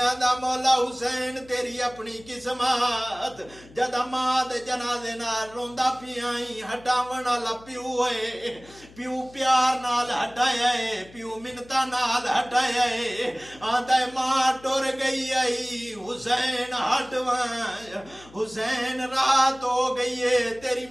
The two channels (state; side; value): noise; left; hum, 23 dB below the sound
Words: آدھا مولا حسین تیری اپنی قسمت، جدا ماں دے جنازے نال روندا پیائی، ہٹاون والا پیو ہے، پیو پیار نال ہٹایا ہے، پیو منتا نال ہٹایا ہے، آدھا ماں ٹور گئی آئی حسین ہٹوائیں، حسین رات ہو گئی ہے تیری